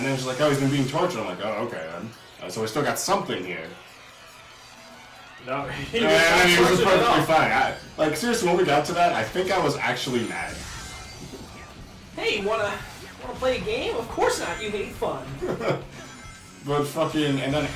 then she's like, oh, he's been being tortured. I'm like, oh, okay then. So we still got something here. No, He was perfectly fine. Seriously, when we got to that, I think I was actually mad. Hey, wanna play a game? Of course not. You hate fun. But fucking, and then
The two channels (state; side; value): identical; both; correlation 1.00